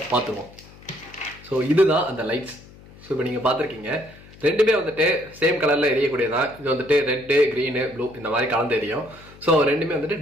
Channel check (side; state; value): left; noise; hum, 22 dB below the sound